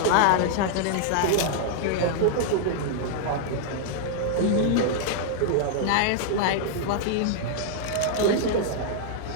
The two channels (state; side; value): different; both; correlation -0.01